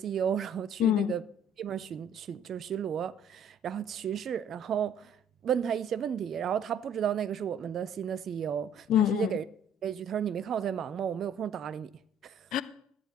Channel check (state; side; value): normal; both; correlation 0.57